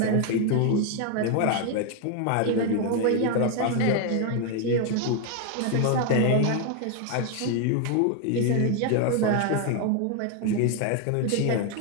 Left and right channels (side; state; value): both; different; correlation 0.01